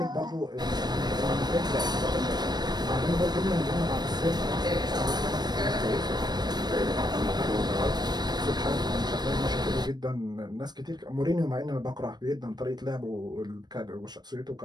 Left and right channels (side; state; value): left; late; 0.20 ms